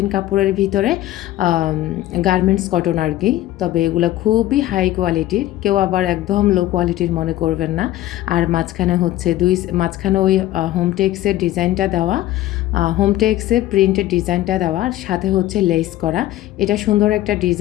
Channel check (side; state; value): right; quieter; 14.6 dB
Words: কাপড়ের ভিতরে গার্মেন্টস কটন আর কি। তবে এগুলো খুবই হাই কোয়ালিটির, কেউ আবার একদম লো কোয়ালিটির মনে করবেন না। আর মাঝখানে হচ্ছে মাঝখানে ওই হোমটেক্সের ডিজাইনটা দেওয়া, হোমটেক্সের প্রিন্টের ডিজাইনটা দেওয়া, আর সাথে হচ্ছে লেস করা। এটা সুন্দর একটা